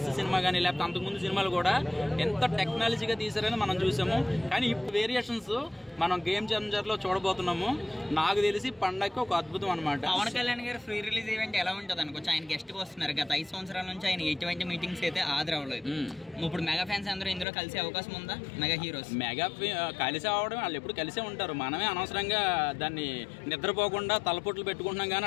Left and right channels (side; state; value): right; drops out; at 17.4 s